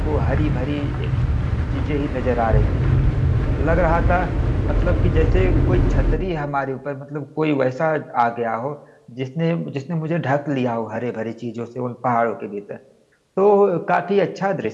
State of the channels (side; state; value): both; identical; correlation 1.00